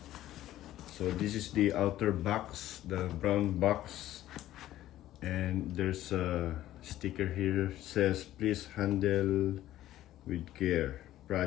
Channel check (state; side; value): quieter; right; 13.9 dB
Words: So this is the outer box, the brown box, and there's a sticker here says please handle with care,